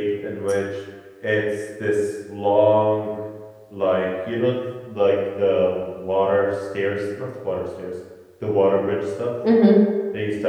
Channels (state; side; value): identical; both; correlation 1.00